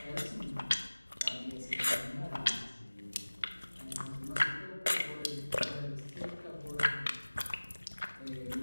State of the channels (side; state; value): both; inverted; correlation -1.00